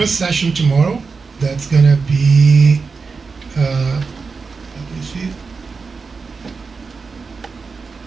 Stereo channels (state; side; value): quieter; left; 4.7 dB